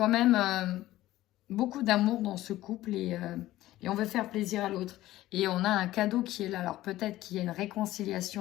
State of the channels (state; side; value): quieter; right; 15.6 dB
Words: même beaucoup d'amour dans ce couple et on veut faire plaisir à l'autre. Et on a un cadeau qui est là. Alors peut-être qu'il y a une